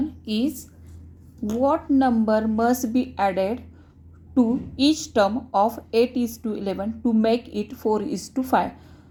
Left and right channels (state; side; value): identical; both; correlation 1.00